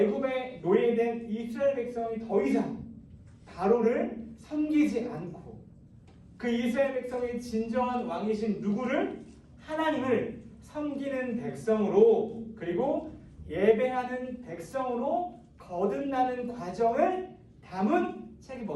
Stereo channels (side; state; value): both; identical; correlation 1.00